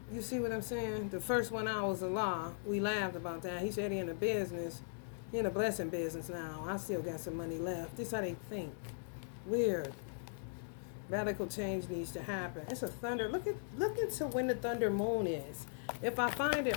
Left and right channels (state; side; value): silent; right; digital silence